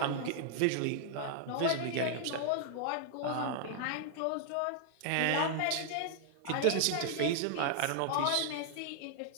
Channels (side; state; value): both; different; correlation -0.01